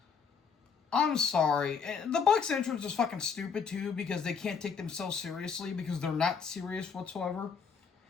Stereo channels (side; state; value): right; quieter; 6.1 dB